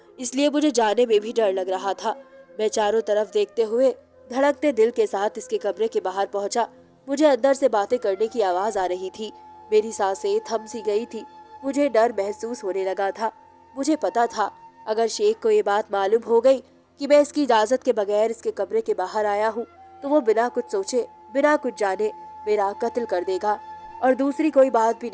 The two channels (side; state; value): both; identical; correlation 1.00